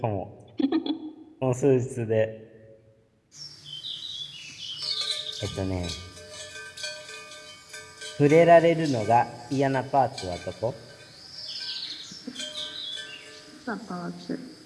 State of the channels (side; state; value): both; identical; correlation 1.00